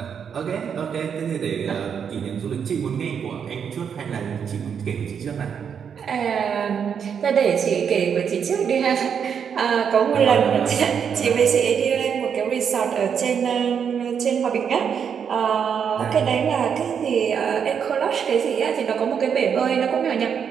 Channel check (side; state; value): left; quieter; 7.4 dB